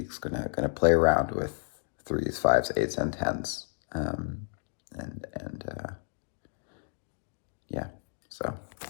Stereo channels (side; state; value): right; silent; digital silence